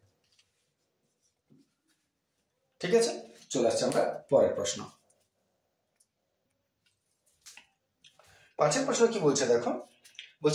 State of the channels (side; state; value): both; identical; correlation 1.00